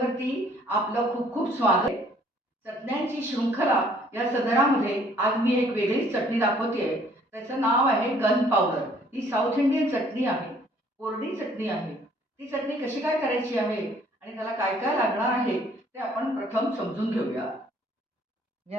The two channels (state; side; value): normal; both; correlation 0.60